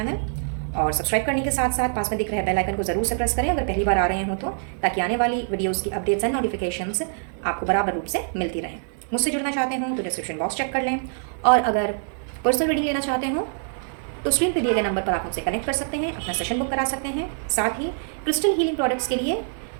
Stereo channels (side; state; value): left; silent; 62 dB below the other